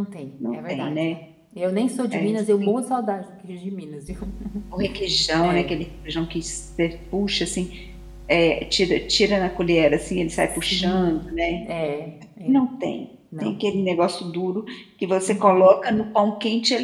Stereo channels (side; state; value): both; identical; correlation 1.00